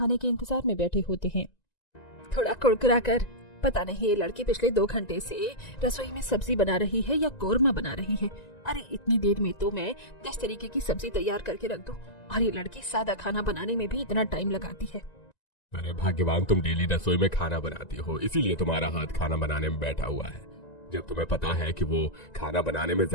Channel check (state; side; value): late; right; 1.9 ms